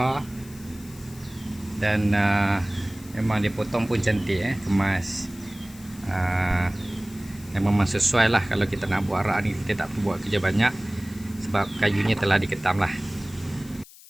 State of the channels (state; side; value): noise; left; hiss, 21 dB below the sound